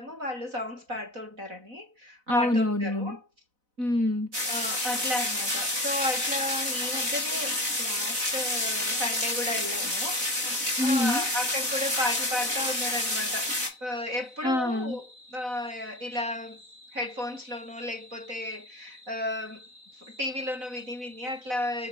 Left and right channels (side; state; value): left; late; 4.0 ms